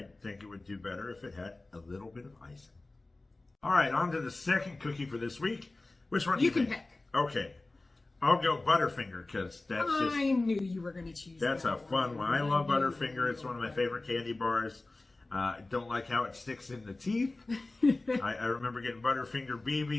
think it would do better if it had a little bit of icing. All right, on to the second cookie for this week. Which one do you can think? pick. Okay. I'll go Butterfinger because that's just... I knew you were going to choose That's that a fun one. I knew love you Butterfinger. were It's one of my gonna favorite candy bars. I don't like how it sticks in the teeth. I remember getting Butterfinger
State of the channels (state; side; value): quieter; right; 3.1 dB